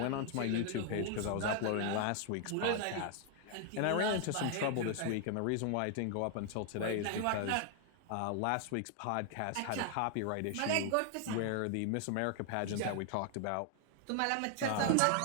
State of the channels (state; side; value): different; both; correlation 0.00